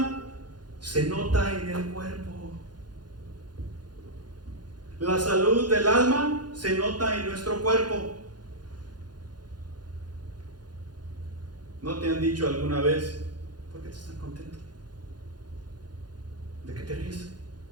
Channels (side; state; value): left; late; 0.70 ms